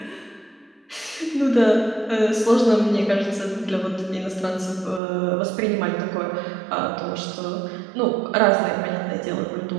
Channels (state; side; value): drops out; left; at 5.0 s